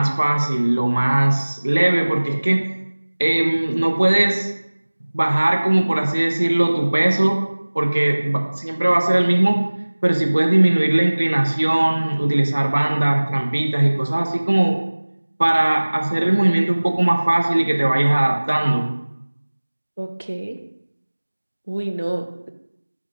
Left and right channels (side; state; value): both; inverted; correlation -1.00